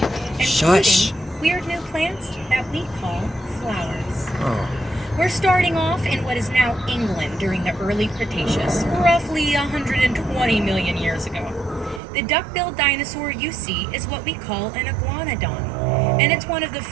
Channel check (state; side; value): drops out; left; at 12.0 s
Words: Shush. including weird new plants that we call flowers. Oh. We're starting off in what is now England during the early Cretaceous, roughly 120 million years ago. The duck-billed dinosaur you see is what we call an iguanodon, and it's one of the